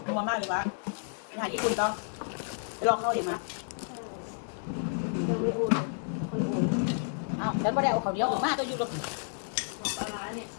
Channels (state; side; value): silent; right; digital silence